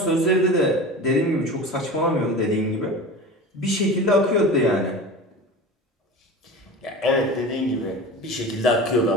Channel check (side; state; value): both; normal; correlation 0.33